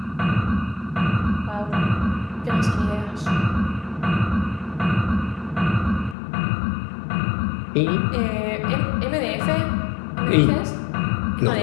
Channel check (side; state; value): right; drops out; at 6.2 s